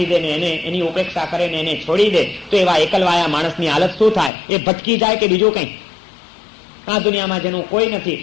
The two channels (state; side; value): drops out; right; at 4.3 s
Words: દે ને એને એની ઉપેક્ષા કરે ને એને છોડી દે, તો એવા એકલવાયા માણસની હાલત શું થાય? એ ભટકી જાય કે બીજું કંઈ? આ દુનિયામાં જેનું કોઈ નથી